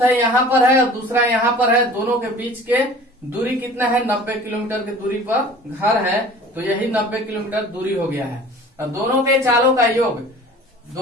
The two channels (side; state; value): both; normal; correlation 0.44